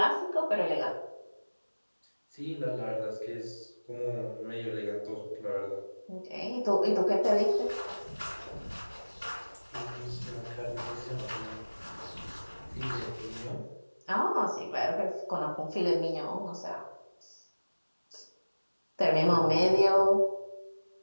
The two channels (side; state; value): both; inverted; correlation -1.00